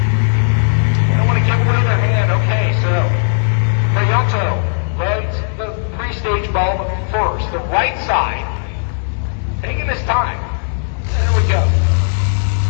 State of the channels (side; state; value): right; silent; digital silence